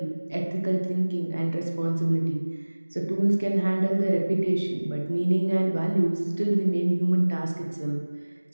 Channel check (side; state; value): both; inverted; correlation -1.00